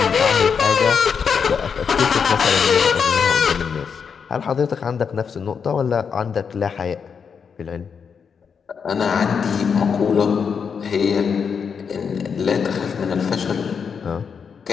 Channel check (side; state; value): right; quieter; 6.4 dB